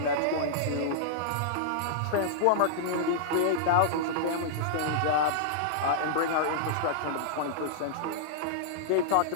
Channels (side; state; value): both; different; correlation -0.02